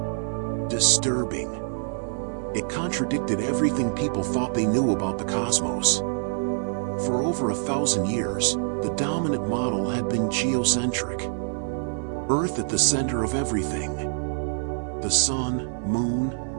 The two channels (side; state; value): left; silent; digital silence